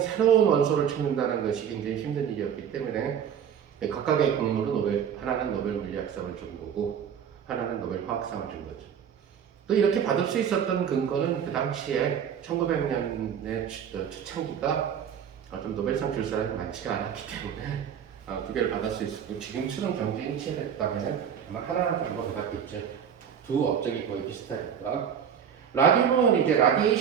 새로운 원소를 찾는다는 것이 굉장히 힘든 일이었기 때문에 각각의 공로로 하나는 노벨 물리학상을 준 거고 하나는 노벨 화학상을 준 거죠. 또 이렇게 받을 수 있었던 근거는 그 당시에 1900년의 초창기가 좀 노벨상 줄 사람이 많지가 않았기 때문에 두 개를 받을 수 있었고 지금처럼 경쟁이 치열했다면 아마 하나 정도 받았겠죠. 두 업적이 거의 비슷하니까. 라듐은 이제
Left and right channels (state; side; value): quieter; left; 8.3 dB